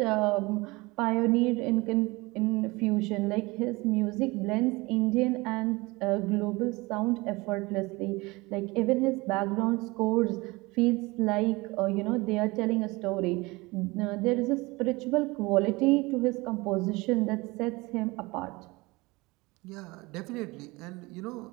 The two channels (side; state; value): left; quieter; 23.3 dB